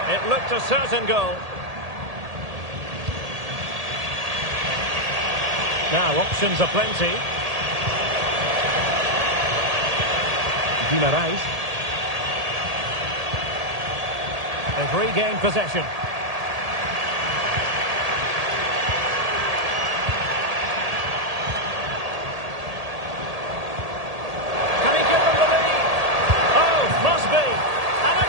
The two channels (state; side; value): late; left; 1.8 ms